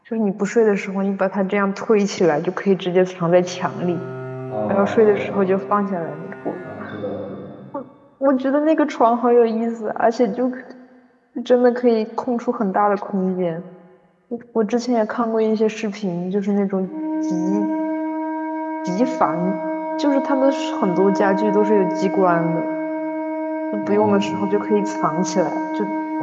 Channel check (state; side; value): identical; both; correlation 1.00